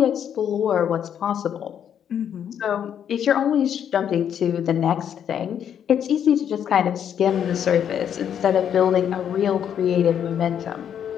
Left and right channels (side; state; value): right; quieter; 8.9 dB